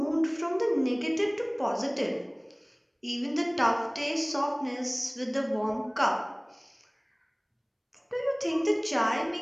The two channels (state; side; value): identical; both; correlation 1.00